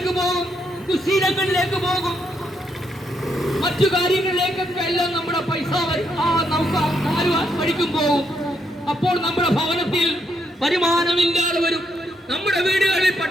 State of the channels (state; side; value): normal; both; correlation 0.77